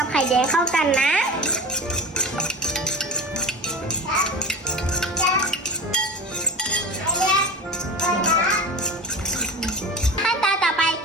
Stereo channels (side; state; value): both; normal; correlation 0.32